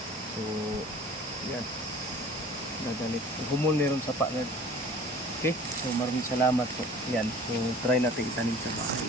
So, yan. Dadali. Humul meron sa paagad. Okay? So, maraming salamat po. Yan. So, try natin itanim sa bahay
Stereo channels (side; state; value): both; normal; correlation 0.46